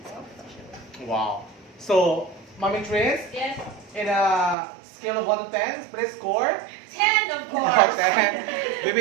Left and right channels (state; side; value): drops out; left; at 4.5 s